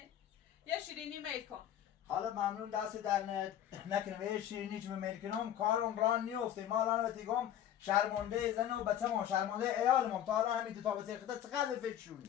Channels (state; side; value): quieter; right; 10.8 dB